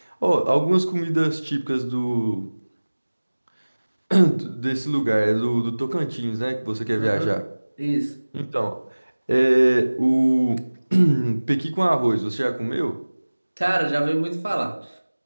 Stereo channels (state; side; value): inverted; both; correlation -1.00